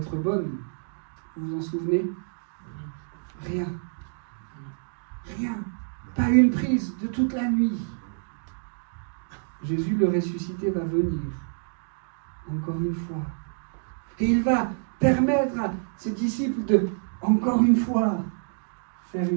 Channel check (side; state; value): left; silent; digital silence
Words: bonne. Vous vous en souvenez? Rien. Rien. Pas une prise de toute la nuit. Jésus, le ressuscité, va venir. Encore une fois. Et il va permettre à ses disciples de, encore une fois, faire